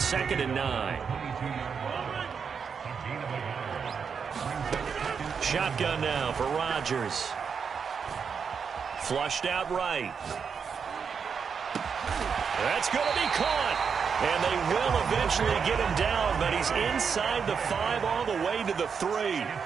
2nd and 9. Shotgun now for Rodgers. Flushed out right. That's going to be caught. And they will eventually get him down, but he's inside the 5 all the way to the 3.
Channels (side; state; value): left; quieter; 6.3 dB